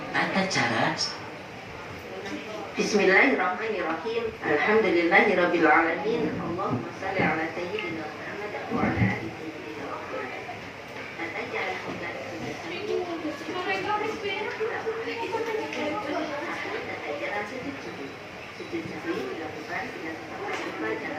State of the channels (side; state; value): both; identical; correlation 1.00